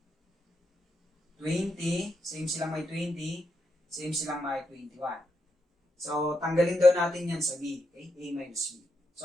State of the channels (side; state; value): both; normal; correlation 0.83